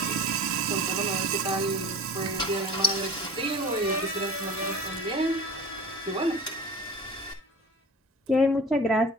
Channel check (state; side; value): normal; both; correlation 0.36